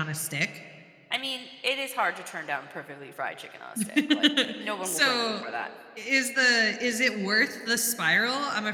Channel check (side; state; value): both; identical; correlation 1.00